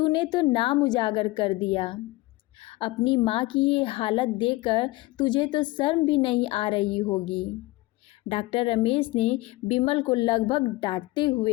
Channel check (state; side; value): quieter; right; 20.4 dB